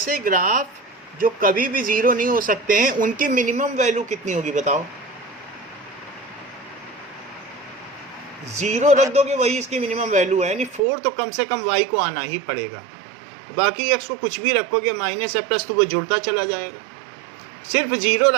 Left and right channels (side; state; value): left; drops out; at 10.8 s